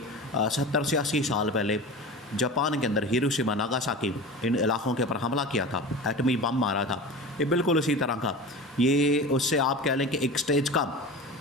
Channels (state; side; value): normal; both; correlation 0.32